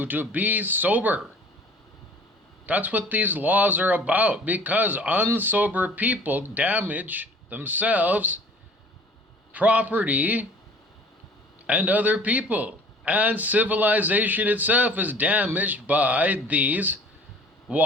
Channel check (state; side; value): normal; both; correlation 0.49